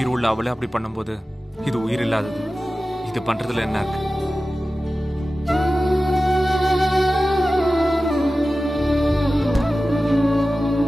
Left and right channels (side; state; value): both; normal; correlation 0.95